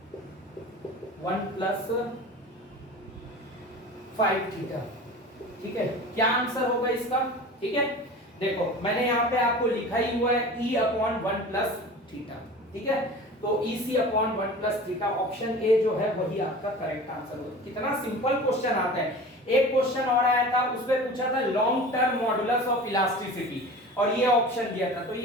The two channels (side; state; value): both; normal; correlation 0.37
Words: 1 प्लस 5 थीटा, ठीक है। क्या आंसर होगा इसका? ठीक है, देखो मैंने यहाँ पे आपको लिखा ही हुआ है E अपॉन 1 प्लस थीटा, ठीक है। तो EC upon 1 plus theta, option A जो है वही आपका करेक्ट आंसर होगा। कितना सिंपल क्वेश्चन आता है। एक क्वेश्चन और आया था, उसमें पूछा था long term modulus of elasticity, और ये ऑप्शन दिया था, तो